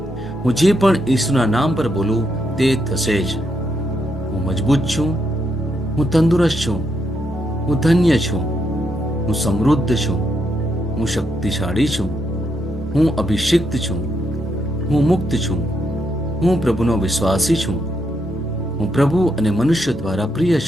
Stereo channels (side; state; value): both; normal; correlation 0.79